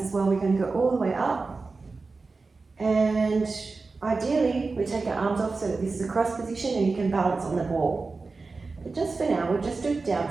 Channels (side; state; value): left; quieter; 4.0 dB